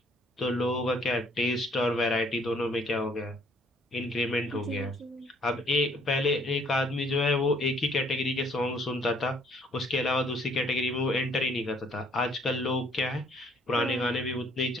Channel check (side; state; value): both; normal; correlation 0.62